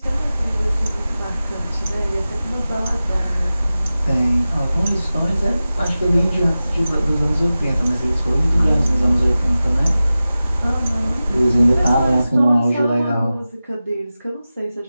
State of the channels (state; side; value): inverted; both; correlation -0.95